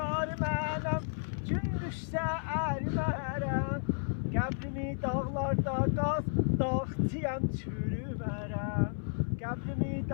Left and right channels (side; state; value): right; silent; 56 dB below the other